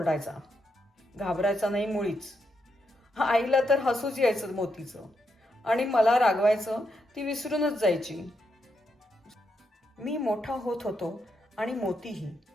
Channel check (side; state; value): both; normal; correlation 0.81